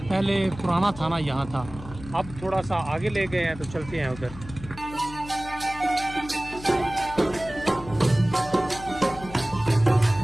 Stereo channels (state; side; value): noise; left; hum, 15 dB below the sound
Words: पुराना थाना यहाँ था, अब थोड़ा सा आगे ले गए हैं, तो चलते हैं उधर।